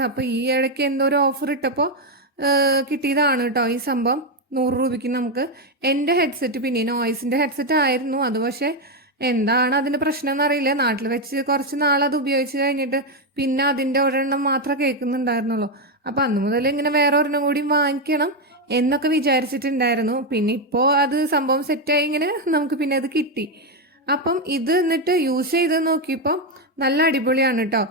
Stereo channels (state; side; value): normal; both; correlation 0.05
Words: അപ്പോൾ ഈ ഇടയ്ക്ക് എന്തോ ഒരു ഓഫർ ഇട്ടപ്പോൾ കിട്ടിയതാണ് കേട്ടോ ഈ സംഭവം. 100 രൂപയ്ക്ക് നമുക്ക്. എൻ്റെ ഹെഡ്സെറ്റ് പിന്നെ നോയ്സിൻ്റെ ഹെഡ്സെറ്റ് ആയിരുന്നു അത്, പക്ഷേ എന്താണ് അതിൻ്റെ പ്രശ്നം എന്നറിയില്ല. നാട്ടിൽ വെച്ച് കുറച്ച് നാളത് ഉപയോഗിച്ച് കഴിഞ്ഞിട്ട് പിന്നെ അതിൻ്റെ ഒരെണ്ണം മാത്രമേ കേൾക്കുന്നുണ്ടായിരുന്നുള്ളൂ. അപ്പം അന്ന് മുതൽ ഇങ്ങനെ വേറെ ഒരെണ്ണം കൂടി വാങ്ങിക്കണം എന്നൊക്കെ വിചാരിച്ചിട്ടുണ്ടായിരുന്നു. പിന്നെ ഇപ്പോൾ അത് സംഭവം സെറ്റായി, ഇങ്ങനെ നമുക്ക് പിന്നെ അത് കിട്ടി. അപ്പം ഇത് എന്നിട്ട് യൂസ് ചെയ്ത് നോക്കിയപ്പോൾ നല്ല അടിപൊളിയാണ് കേട്ടോ.